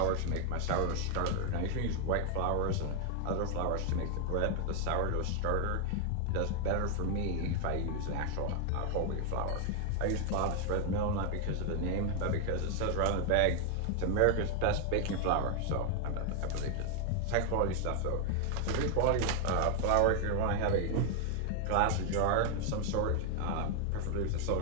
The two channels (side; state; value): both; different; correlation 0.00